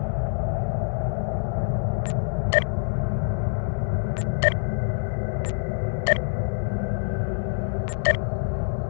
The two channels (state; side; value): silent; right; digital silence